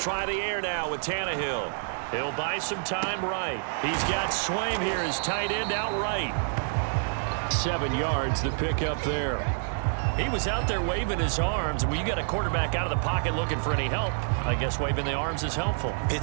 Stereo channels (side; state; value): left; silent; digital silence